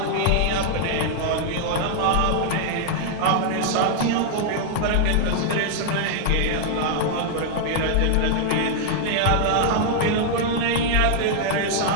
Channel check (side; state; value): both; different; correlation -0.01